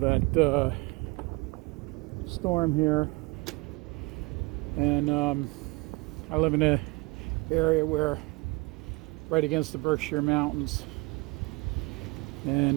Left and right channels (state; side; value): quieter; left; 25.9 dB